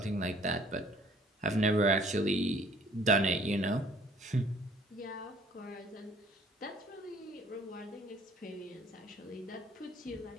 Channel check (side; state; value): both; normal; correlation 0.56